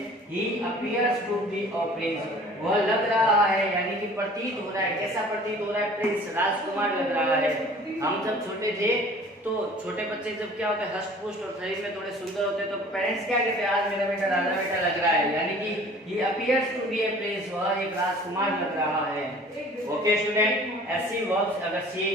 he appears to be a prince, वह लग रहा है, यानी कि प्रतीत हो रहा है। कैसा प्रतीत हो रहा है? प्रिंस, राजकुमार लग रहा है। हम जब छोटे थे तो छोटे बच्चे जब क्या होते हैं? हष्ट पुष्ट और शरीर में थोड़े सुंदर होते हैं तो पेरेंट्स क्या कहते हैं? आज मेरा बेटा राजा बेटा लग रहा है, यानी कि he appears to be a prince, वह एक राजकुमार लग रहा है। ओके स्टूडेंट, ऐसी वर्ब्स अगर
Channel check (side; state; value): both; normal; correlation 0.48